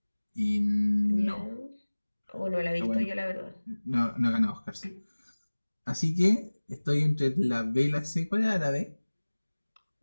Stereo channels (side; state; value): both; inverted; correlation -1.00